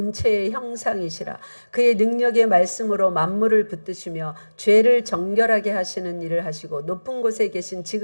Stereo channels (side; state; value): both; inverted; correlation -1.00